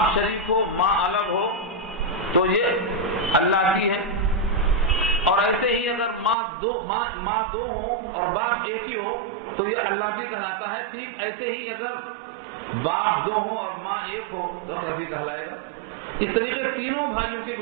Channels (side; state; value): left; drops out; at 6.4 s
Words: شریک ہو ماں الگ ہو تو یہ اللتی ہے، اور ایسے ہی اگر ماں دو ہوں اور باپ ایک ہی ہو تو یہ اللتی کہلاتا ہے۔ ٹھیک ایسے ہی اگر باپ 2 ہوں اور ماں 1 ہو تو اخیافی کہلائے گا۔ اس طریقے تینوں بھائیوں کی